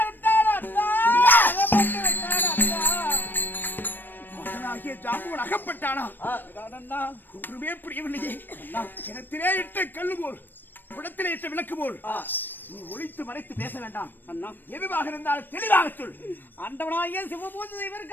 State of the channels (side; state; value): right; late; 0.093 ms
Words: அண்ணா. மகனாகிய ஜாம்பவன் அகப்பட்டானா? ஒன்றுமே புரியவில்லையே. கிணத்திலே இட்ட கல்லு போல், குடத்திலே இட்ட விளக்கு போல் நீ ஒளித்து மறைத்து பேச வேண்டாம் அண்ணா. எதுவாக இருந்தாலும் தெளிவாக சொல். ஆண்டவனாகிய சிவபூஜை